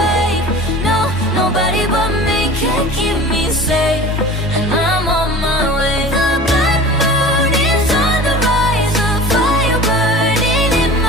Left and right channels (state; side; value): normal; both; correlation 0.39